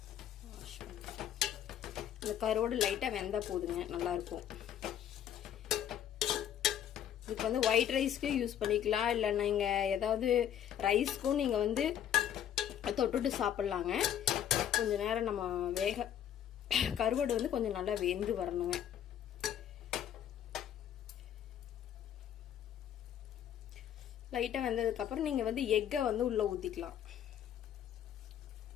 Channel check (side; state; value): right; quieter; 10.1 dB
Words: வாஷ் பண்ணி இந்த கருவோடு லைட்டாக வெந்தால் போதுங்க, நல்லாயிருக்கும். இதுக்கு வந்து ஒயிட் ரைஸ்க்கு யூஸ் பண்ணிக்கலாம், இல்லை நீங்கள் ஏதாவது ரைஸ்க்கும் நீங்கள் வந்து தொட்டுட்டு சாப்பிட்லாங்க. கொஞ்சம் நேரம் நம்ம கருவாடு வந்து கொஞ்சம் நல்லா வெந்து வரணுங்க. லைட்டாக வெந்ததுக்கப்புறம் நீங்கள் வந்து எக்கை வந்து உள்ளே ஊற்றிக்கலாம்.